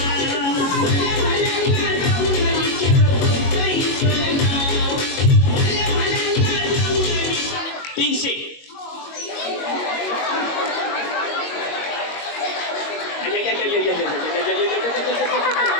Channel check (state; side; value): late; right; 22 ms